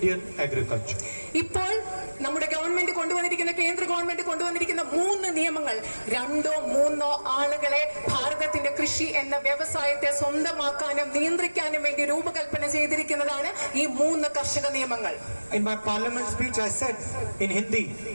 agriculture. ഇപ്പോൾ നമ്മുടെ government കൊണ്ടുവന്നിരിക്കുന്ന, കേന്ദ്ര government കൊണ്ടുവന്നിരിക്കുന്ന 3 നിയമങ്ങൾ 2 or 3 ആളുകളെ ഭാരതത്തിന്റെ കൃഷി എന്ന വ്യവസായത്തെ സ്വന്തമാക്കാനും നിയന്ത്രിക്കാനും വേണ്ടി രൂപകൽപ്പന ചെയ്തിരിക്കുന്നതാണ് ഈ 3 കർഷക നിയമങ്ങൾ. In my parliament speech I said in Hindi,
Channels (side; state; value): both; inverted; correlation -1.00